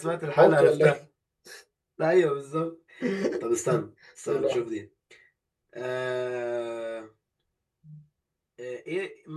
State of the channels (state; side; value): identical; both; correlation 1.00